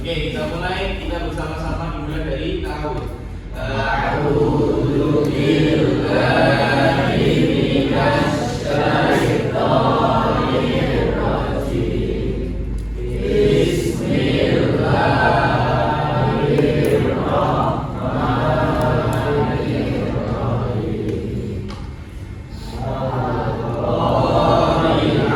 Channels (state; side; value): identical; both; correlation 1.00